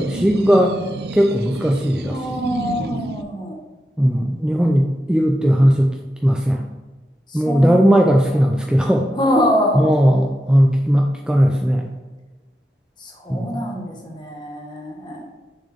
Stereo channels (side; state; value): both; normal; correlation 0.89